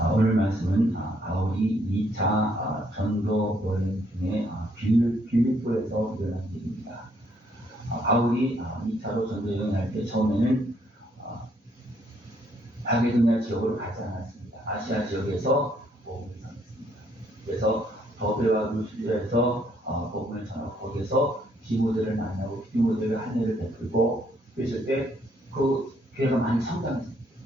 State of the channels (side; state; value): both; normal; correlation 0.69